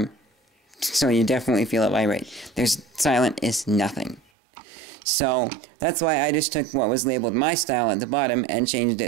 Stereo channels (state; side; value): drops out; left; at 4.2 s